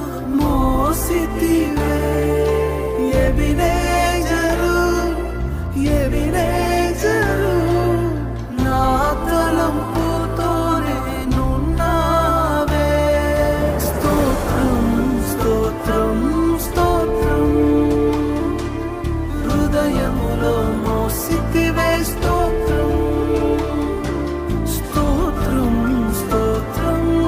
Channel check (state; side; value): identical; both; correlation 1.00